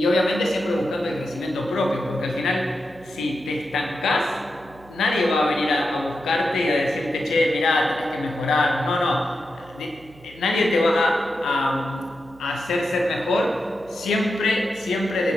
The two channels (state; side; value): noise; right; hum, 24 dB below the sound